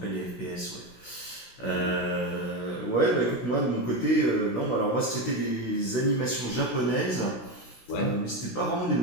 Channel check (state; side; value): late; right; 16 ms